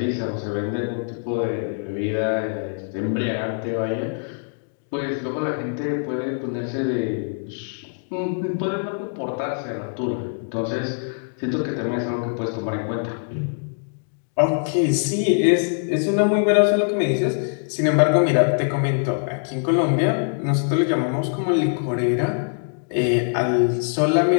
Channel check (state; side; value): silent; right; digital silence